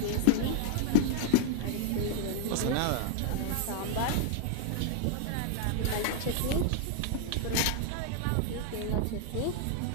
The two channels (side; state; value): both; different; correlation 0.00